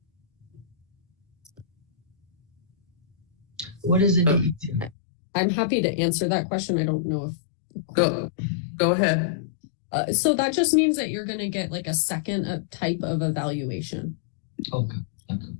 What is a DECR? I'm happy to answer that question. I don't know if... Go ahead. So that just means that you're going to get like a second type of evaluation. Okay.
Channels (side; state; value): right; drops out; at 5.0 s